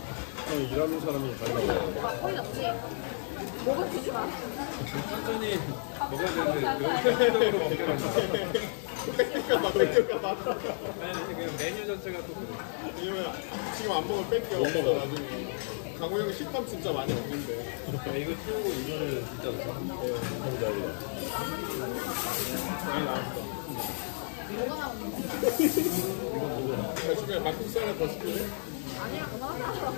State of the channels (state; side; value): silent; right; digital silence